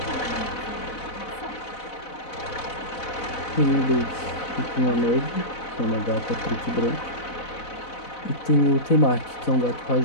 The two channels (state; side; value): late; right; 4.0 ms